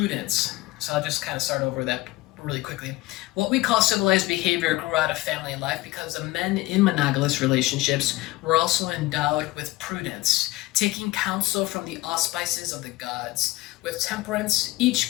So I'll just kind of start over that really quickly. What we call civilized behavior grew out of family life because the men in monogamous relationships were also endowed with prudence, taking counsel from the auspices of the gods, with temperance,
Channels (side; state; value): right; quieter; 19.6 dB